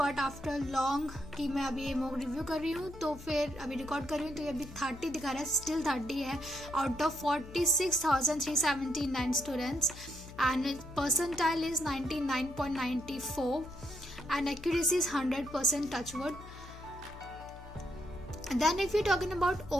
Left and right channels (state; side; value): noise; left; hum, 16 dB below the sound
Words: after long कि मैं अभी ये mock review कर रही हूँ तो फिर अभी रिकॉर्ड कर रही हूँ तो ये अभी 30 दिखा रहा है, स्टिल 30 है out of 46,379 students and percentile is 99.94 and accuracy is 100% touchwood. Then if you're talking about